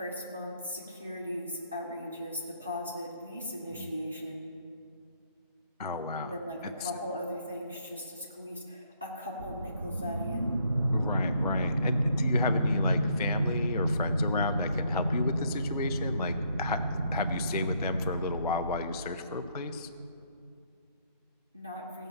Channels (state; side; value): inverted; both; correlation -0.69